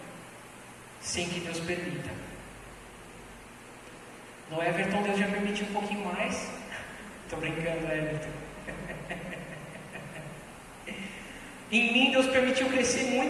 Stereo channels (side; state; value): both; identical; correlation 1.00